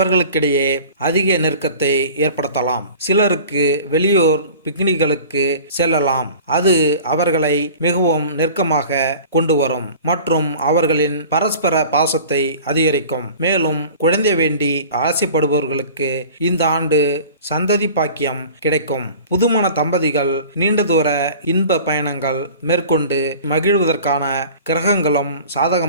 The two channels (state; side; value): inverted; both; correlation -0.42